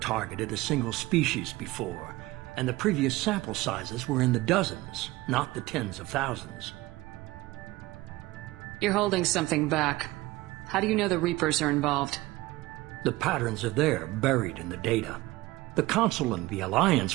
a single species before, and the previous sample sizes were in the dozens, not the tens of thousands. You're holding something back. How do you know the Reapers are involved? The patterns are there, buried in the data. The Council and the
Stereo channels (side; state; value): left; quieter; 19.5 dB